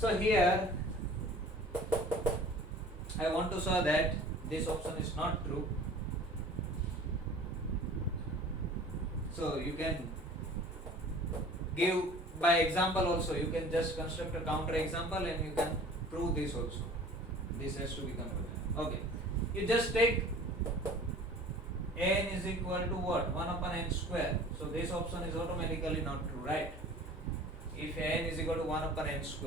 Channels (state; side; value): normal; both; correlation 0.45